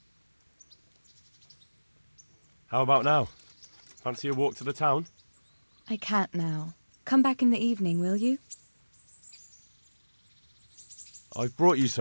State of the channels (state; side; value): inverted; both; correlation -1.00